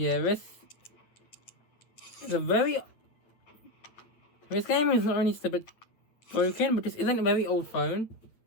this is a very... This game is not only just a bit broken, but this isn't a very old phone.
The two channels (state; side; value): late; right; 9.0 ms